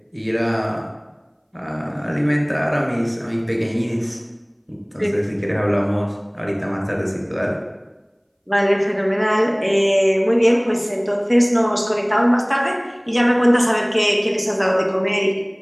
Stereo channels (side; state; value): both; identical; correlation 1.00